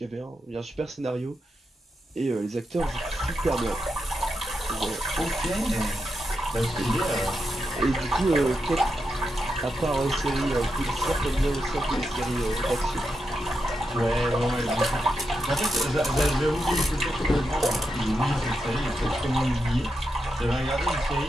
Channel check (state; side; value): normal; both; correlation 0.86